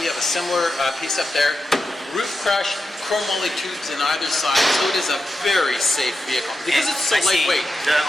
we have a similar piece up there. Roof crush, chrome moly tubes in either side, so it is a very safe vehicle because it's so lightweight.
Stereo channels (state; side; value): normal; both; correlation 0.89